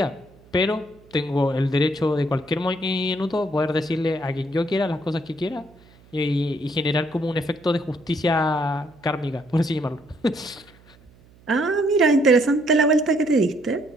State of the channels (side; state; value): right; noise; hum, 27 dB below the sound